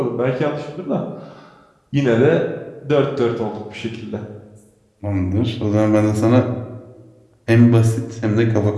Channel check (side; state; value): both; identical; correlation 1.00